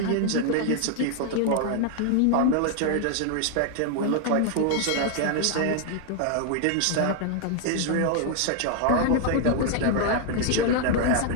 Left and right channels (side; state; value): both; different; correlation 0.00